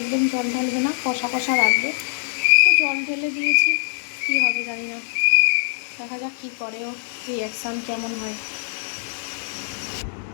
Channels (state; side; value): silent; right; 63 dB below the other